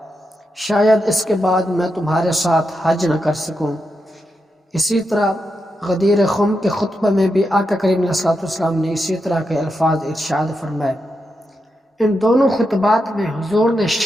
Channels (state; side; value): normal; both; correlation 0.86